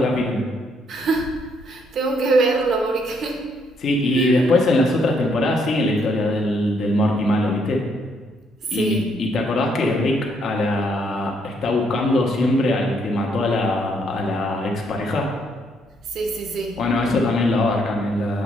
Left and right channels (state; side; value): normal; both; correlation 0.72